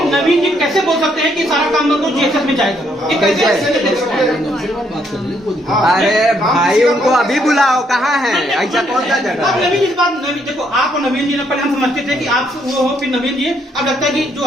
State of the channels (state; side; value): normal; both; correlation 0.71